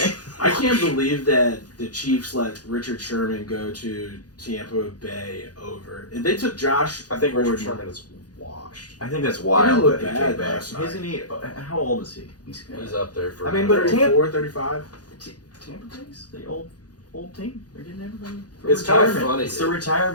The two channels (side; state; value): right; late; 0.69 ms